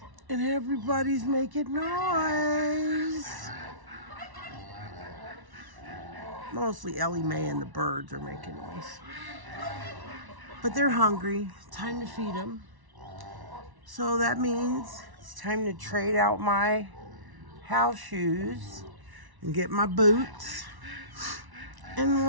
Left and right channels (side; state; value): left; late; 1.1 ms